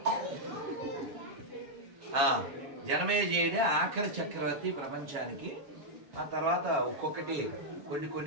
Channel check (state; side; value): late; left; 7.2 ms